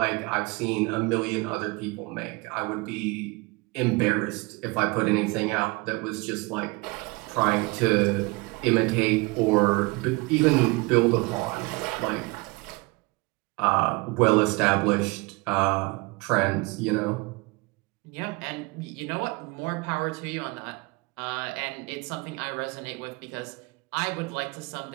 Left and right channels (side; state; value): left; quieter; 25.6 dB